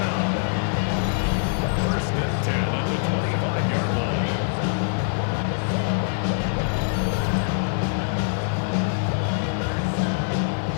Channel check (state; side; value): silent; right; 62 dB below the other